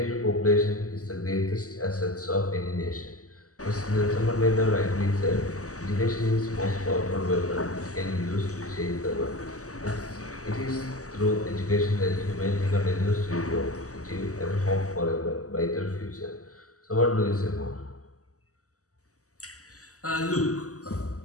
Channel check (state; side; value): late; right; 0.66 ms